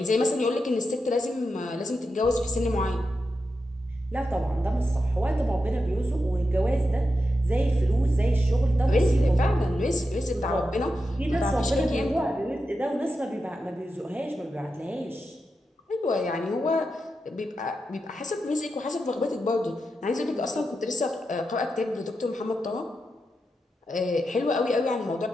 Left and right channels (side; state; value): both; normal; correlation 0.88